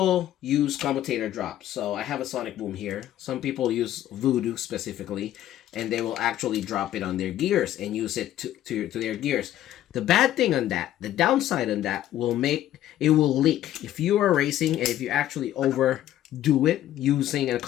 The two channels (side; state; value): right; quieter; 12.7 dB